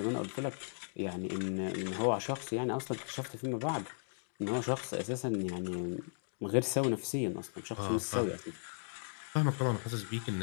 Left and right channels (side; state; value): right; silent; digital silence